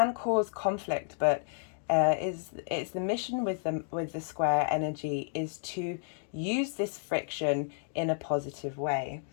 cause conflict, but it's the mission with the square energy is to use this friction in a positive way.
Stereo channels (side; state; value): right; silent; digital silence